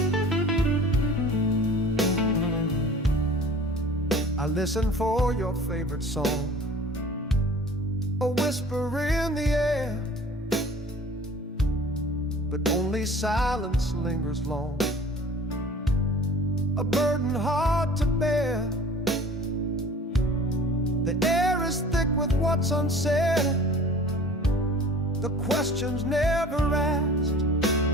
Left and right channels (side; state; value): both; normal; correlation 0.45